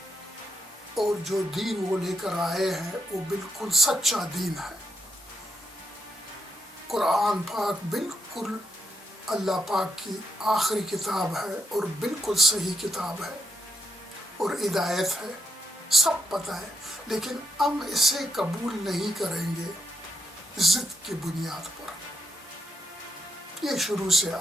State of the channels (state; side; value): normal; both; correlation 0.79